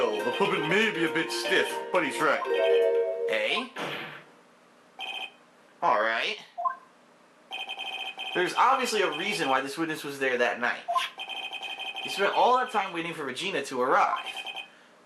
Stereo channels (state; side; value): identical; both; correlation 1.00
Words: puppet may be a bit stiff, but he's right. Eh? Alright. There's obviously a reason why this witness was there that night. He spent all that time waiting for Regina to arrive.